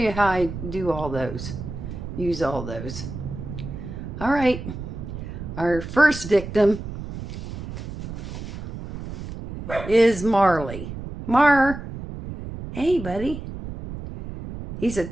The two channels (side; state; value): right; noise; rumble, 9 dB below the sound